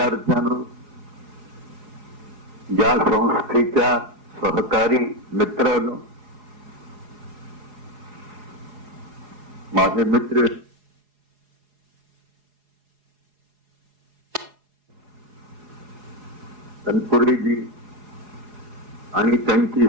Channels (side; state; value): left; late; 4.8 ms